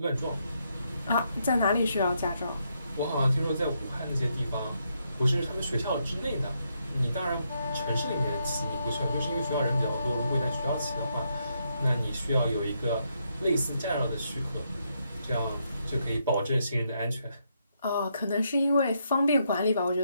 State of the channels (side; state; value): both; inverted; correlation -0.78